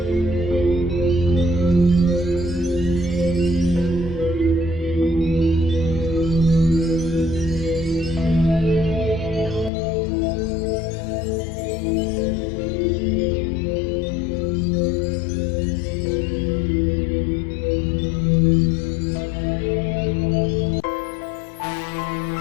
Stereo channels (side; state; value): right; drops out; at 9.7 s